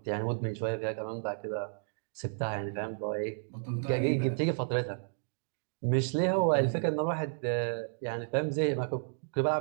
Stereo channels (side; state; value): left; silent; digital silence